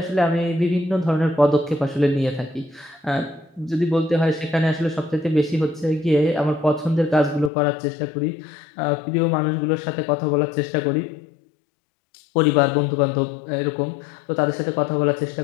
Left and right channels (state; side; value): drops out; right; at 7.5 s